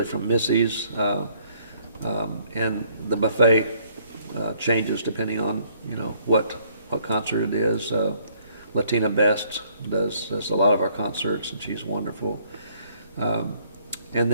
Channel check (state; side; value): inverted; both; correlation -0.65